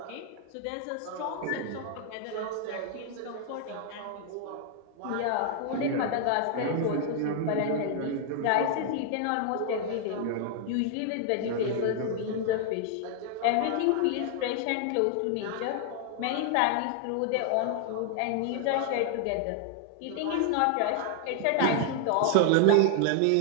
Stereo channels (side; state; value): both; different; correlation 0.00